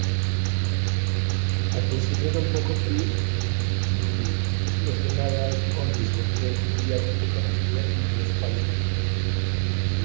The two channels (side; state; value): left; silent; digital silence